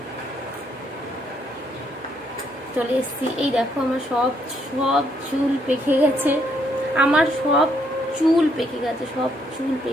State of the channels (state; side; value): normal; both; correlation 0.72